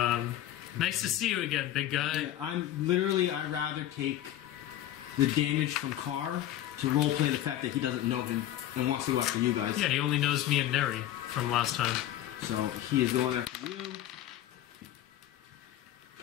nice to see you again, big guy. Yeah, I'd rather take the damage from Karr to roleplay the fact that he doesn't know him and wants to go after you guys. Yeah, he only knows me and Neri from last time. So he is going after you.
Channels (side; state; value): right; quieter; 12.8 dB